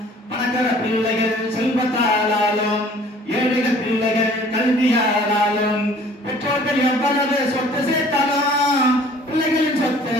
பணக்கார பிள்ளைகள் செல்வத்தாலும் ஏழைகள் பிள்ளைகள் கல்வியாலும் பெற்றோர்கள் எவ்வளவு சொத்து சேர்த்தாலும் பிள்ளைகளின் சொத்து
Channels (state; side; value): normal; both; correlation 0.52